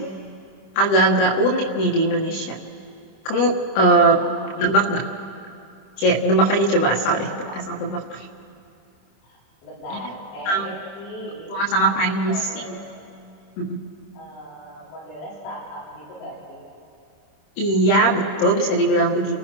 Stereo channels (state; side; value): late; right; 26 ms